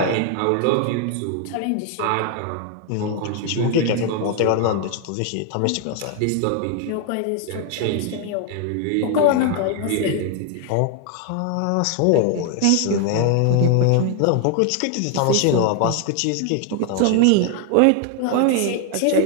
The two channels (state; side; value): different; both; correlation 0.00